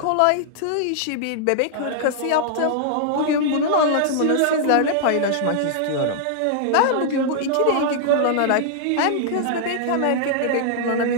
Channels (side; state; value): both; different; correlation -0.01